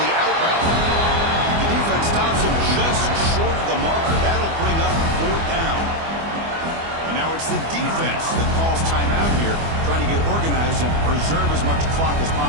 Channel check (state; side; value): late; left; 24 ms